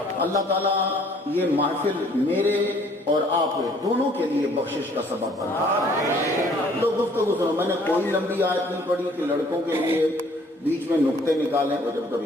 اللہ تعالیٰ یہ محفل میرے اور آپ دونوں کے لیے بخشش کا سبب بنا. تو گفتگو سنو, میں نے کوئی لمبی آیت نہیں پڑھی کہ لڑکوں کے لیے بیچ میں نقطے نکالیں, اور جب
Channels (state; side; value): normal; both; correlation 0.59